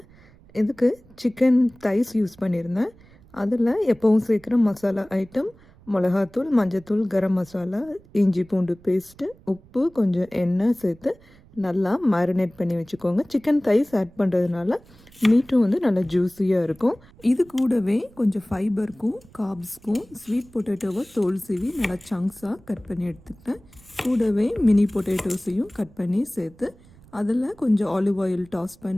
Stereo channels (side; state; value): right; noise; rumble, 26 dB below the sound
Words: இதுக்கு சிக்கன் தைஸ் யூஸ் பண்ணியிருந்தேன். அதில் எப்பவும் சேர்க்குற மசாலா ஐட்டம் மிளகாத்தூள், மஞ்சத்தூள், கரம் மசாலா, இஞ்சி பூண்டு பேஸ்ட்டு, உப்பு, கொஞ்சம் எண்ணெய் சேர்த்து நல்லா மேரினேட் பண்ணி வச்சுக்கோங்க. சிக்கன் தைஸ் ஆட் பண்ணுறதுனால மீட்டும் வந்து நல்லா ஜூஸியாக இருக்கும். இது கூடவே கொஞ்சம் ஃபைபருக்கும் கார்ப்ஸ்க்கும் ஸ்வீட் பொட்டேட்டோவை தோல் சீவி நல்லா சங்க்ஸாக கட் பண்ணி எடுத்துக்கிட்டேன். கூடவே மினி பொட்டேட்டோஸையும் கட் பண்ணி சேர்த்து அதில் கொஞ்சம் ஆலிவ் ஆயில் டாஸ்